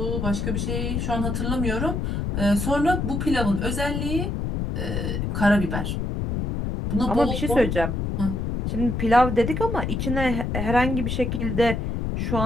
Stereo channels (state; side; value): noise; left; rumble, 1 dB below the sound